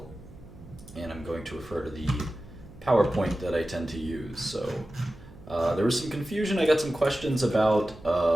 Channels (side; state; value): right; noise; hum, 20 dB below the sound